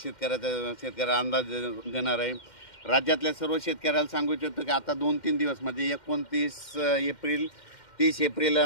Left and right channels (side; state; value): right; late; 2.1 ms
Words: अंदाज देणार आहे. राज्यातल्या सर्व शेतकऱ्याला सांगू इच्छितो की आता 2-3 दिवस म्हणजे 29 एप्रिल, 30 एप्रिल